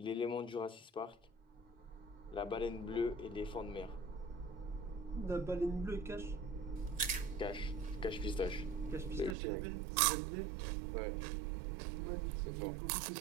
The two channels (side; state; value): left; drops out; at 9.3 s